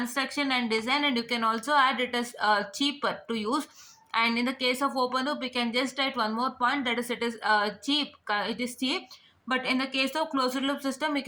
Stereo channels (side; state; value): both; identical; correlation 1.00